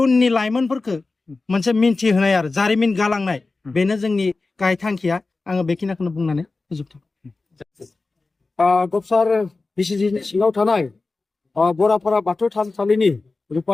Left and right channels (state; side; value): quieter; right; 3.6 dB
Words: लाइमोनफोरखौ मोनसे मिन्थिहोनाय आरो जारिमिन गालांनाय बेनो जोंनि गाहाय थांखिया आङो बेखिनिखौनो बुंनानै फोजोबथों गबसार बिसिजिनि सिङाव थानाय बराफारा बाथौ थानसालिनि